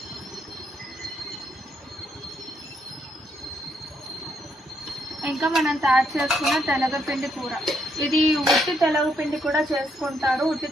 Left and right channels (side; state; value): both; normal; correlation 0.75